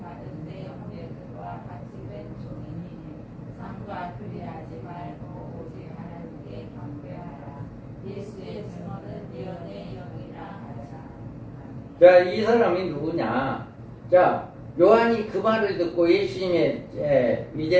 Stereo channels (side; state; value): both; identical; correlation 1.00